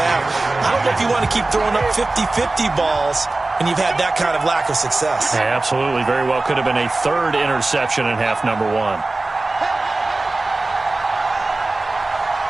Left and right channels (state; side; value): quieter; left; 3.1 dB